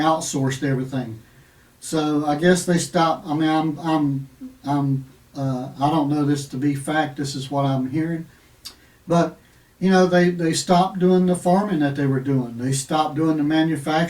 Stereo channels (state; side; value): identical; both; correlation 1.00